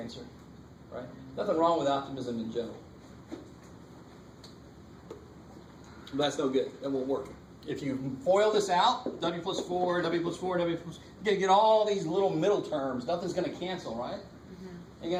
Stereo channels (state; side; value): identical; both; correlation 1.00